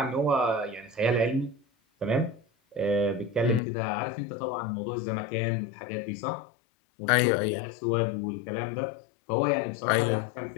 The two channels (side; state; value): right; drops out; at 3.6 s